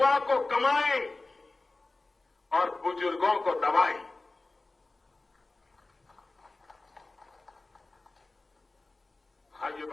को कमाई और बुजुर्गों को दवाई। भाइयों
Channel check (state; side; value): quieter; right; 3.2 dB